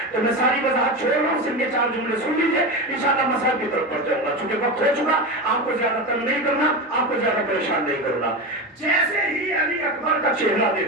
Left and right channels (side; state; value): both; normal; correlation 0.20